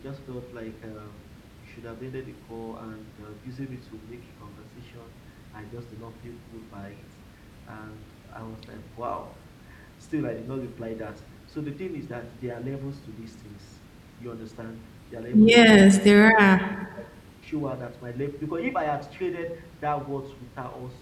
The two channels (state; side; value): identical; both; correlation 1.00